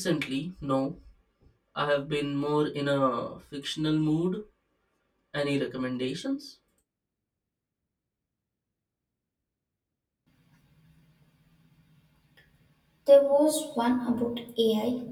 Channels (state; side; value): identical; both; correlation 1.00